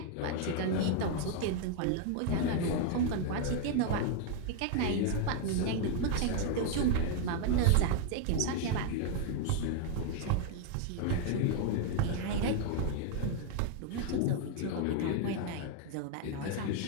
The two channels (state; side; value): different; both; correlation 0.00